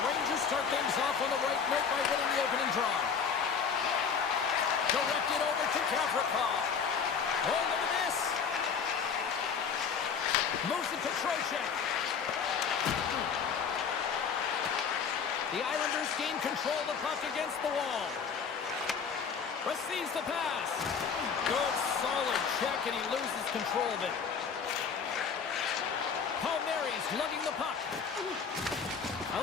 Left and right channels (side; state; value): right; quieter; 6.3 dB